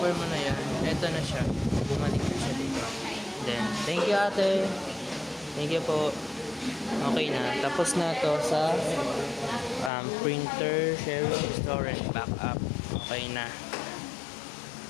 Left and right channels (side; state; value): right; drops out; at 9.9 s